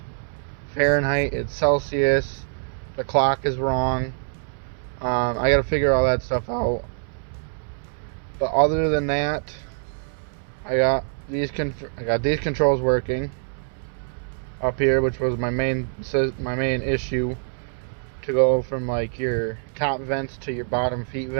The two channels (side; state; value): left; silent; 62 dB below the other